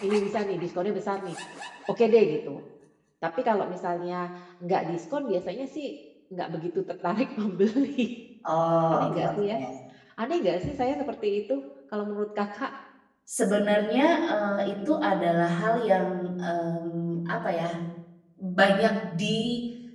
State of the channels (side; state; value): both; identical; correlation 1.00